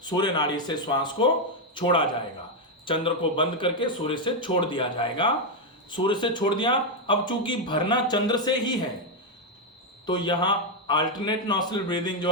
सूर्य नाड़ी से श्वास को छोड़ा जाएगा। चंद्र को बंद करके सूर्य से छोड़ दिया जाएगा। सूर्य से छोड़ दिया। अब चूंकि भरना चंद्र से ही है तो यहां अल्टरनेट नॉस्ट्रल ब्रीदिंग, जो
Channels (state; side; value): normal; both; correlation 0.03